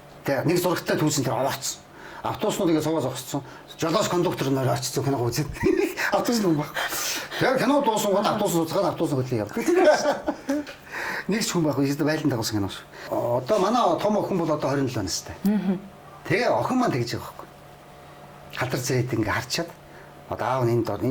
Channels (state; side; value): identical; both; correlation 1.00